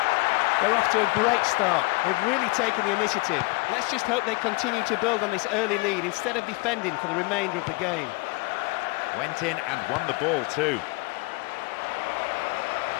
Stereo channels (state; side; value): quieter; right; 26.3 dB